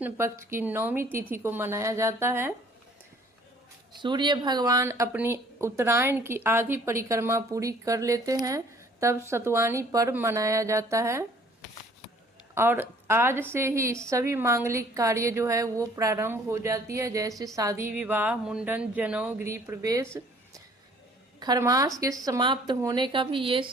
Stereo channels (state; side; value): normal; both; correlation 0.56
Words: पक्ष की 9वीं तिथि को मनाया जाता है। सूर्य भगवान अपनी उत्तरायण की आधी परिक्रमा पूरी कर लेते हैं, तब सतुवानी पर्व मनाया जाता है। और आज से ही सभी मांगलिक कार्य जो है वो प्रारंभ हो जाती है, जैसे शादी विवाह, मुंडन, जनेऊ, गृह प्रवेश। खरमास के समाप्त होने का भी ये